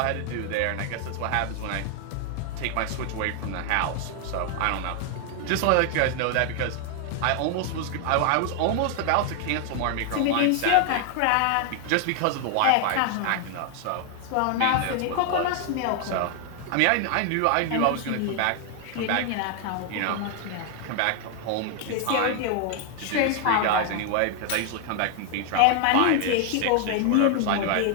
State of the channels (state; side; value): different; both; correlation 0.00